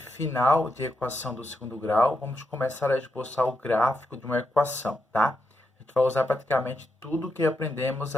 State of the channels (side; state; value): both; normal; correlation 0.84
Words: de equação do segundo grau. Vamos começar a esboçar o gráfico de uma equação, tá? A gente vai usar praticamente tudo que aprendemos